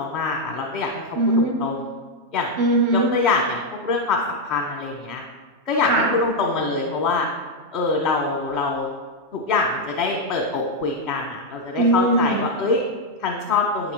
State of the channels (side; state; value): left; late; 3.1 ms